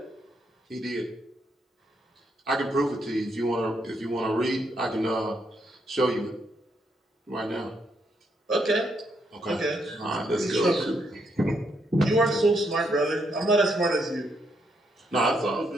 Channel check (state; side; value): normal; both; correlation 0.77